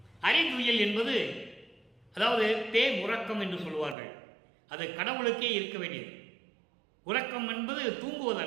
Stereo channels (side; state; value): left; drops out; at 4.0 s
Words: அரிதுயில் என்பது அதாவது உறக்கம் என்று சொல்லுவார்கள். அது கடவுளுக்கே இருக்க வேண்டியது. உறக்கம் என்பது